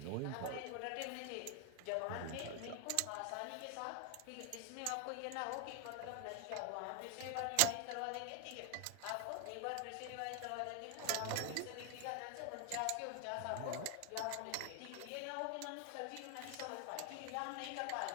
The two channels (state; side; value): different; both; correlation 0.01